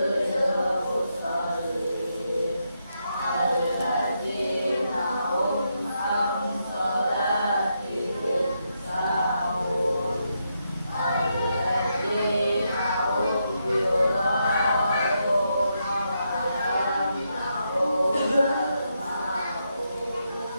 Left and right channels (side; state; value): both; inverted; correlation -0.82